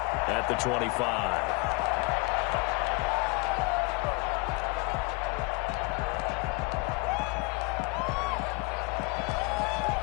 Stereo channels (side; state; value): right; quieter; 27.6 dB